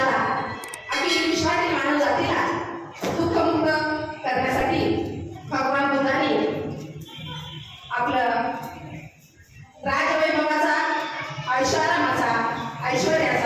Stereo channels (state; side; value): identical; both; correlation 1.00